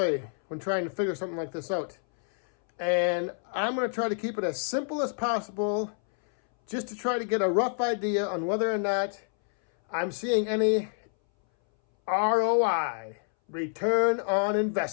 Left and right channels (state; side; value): silent; right; 59 dB below the other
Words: when trying to figure something like this out. And I'm going to try to keep it as simple as possible just to try to get a rough idea on whether or not I'm seeing any ROI, return on